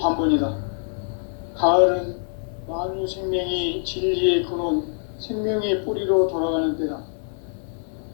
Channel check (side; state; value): right; silent; 58 dB below the other